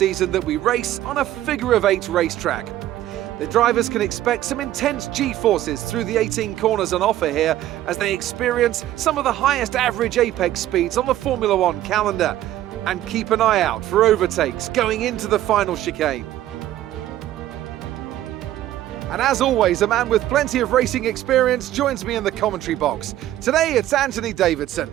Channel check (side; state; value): left; quieter; 13.5 dB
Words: that we race on a figure-of-8 racetrack. The drivers can expect some intense G-forces through the 18 corners on offer here as they experience some of the highest average apex speeds on the Formula One calendar. And keep an eye out for overtakes going into the final chicane. And as always, a man with plenty of racing experience joins me in the commentary box. Today it's Anthony Davidson.